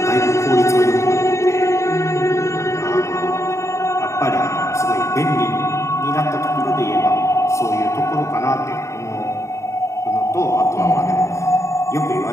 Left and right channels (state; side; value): late; right; 0.14 ms